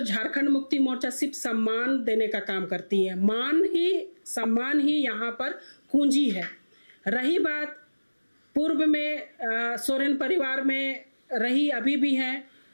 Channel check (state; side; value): inverted; both; correlation -1.00